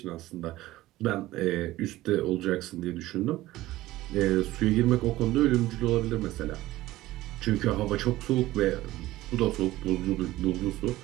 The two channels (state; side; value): quieter; left; 16.7 dB